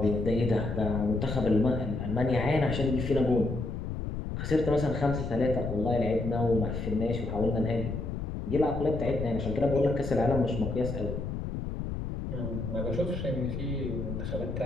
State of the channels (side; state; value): left; noise; rumble, 5 dB below the sound